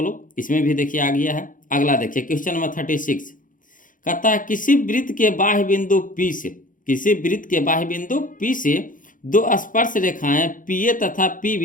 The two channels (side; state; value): right; late; 0.39 ms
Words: लोग, इसमें भी देखिए आ गया है। अगला देखिए क्वेश्चन नंबर 36 कहता है किसी वृत्त के बाह्य बिंदु P से, किसी वृत्त के बाह्य बिंदु P से दो स्पर्श रेखाएं PA तथा